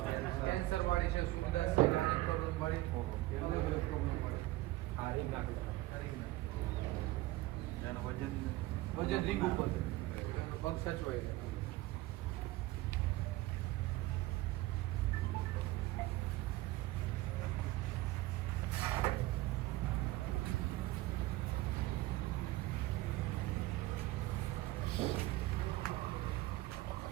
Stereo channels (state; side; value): quieter; left; 18.1 dB